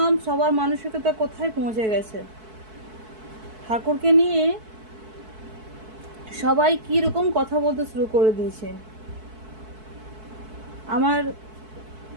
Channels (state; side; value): late; left; 4.6 ms